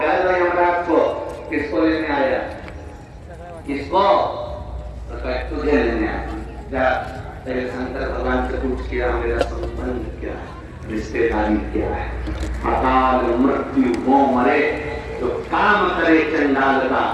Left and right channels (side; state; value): both; identical; correlation 1.00